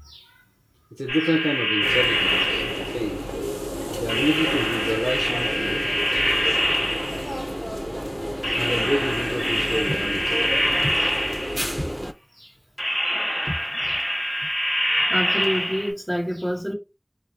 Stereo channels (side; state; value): both; identical; correlation 1.00